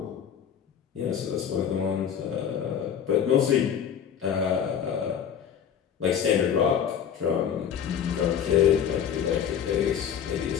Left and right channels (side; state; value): right; quieter; 8.4 dB